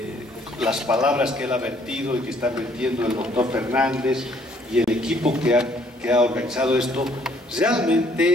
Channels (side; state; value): both; normal; correlation 0.64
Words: las palabras que él ha vertido y que está vertiendo el doctor Fernández y el equipo que ha organizado esto,